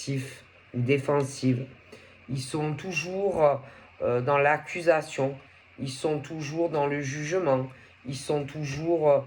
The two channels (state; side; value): identical; both; correlation 1.00